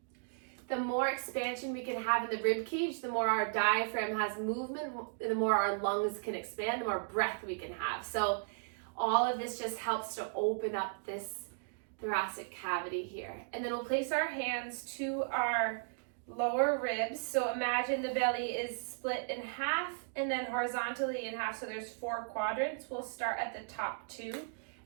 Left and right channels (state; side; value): silent; left; digital silence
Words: The more expansion we can have in the rib cage, the more our diaphragm has movement, the more our lungs can expand, the more breath we can have. So all of this just helps to open up this thoracic cavity here. And then we'll place our hands to our lower ribs. So imagine the belly is split in half and then horizontally in half. So there's 4 quadrants. We'll start at the top 2